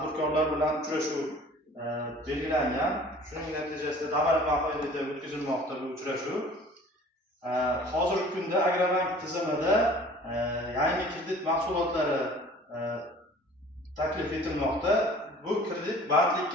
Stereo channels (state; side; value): normal; both; correlation 0.48